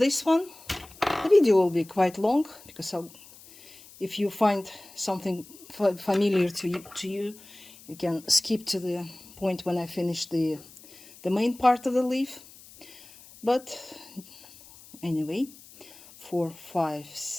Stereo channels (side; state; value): left; noise; hiss, 21 dB below the sound